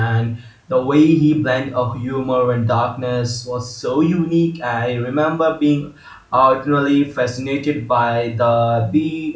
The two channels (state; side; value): identical; both; correlation 1.00